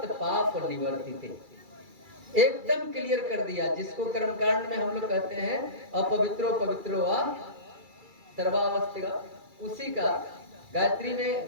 पाप निवर्तिते। एकदम क्लियर कर दिया, जिसको कर्मकांड में हम लोग कहते हैं अपवित्रो पवित्रो वा सर्वावस्थिका, उसी का गायत्री में,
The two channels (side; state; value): left; late; 2.3 ms